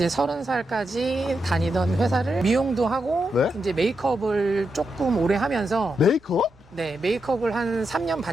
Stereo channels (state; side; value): normal; both; correlation 0.85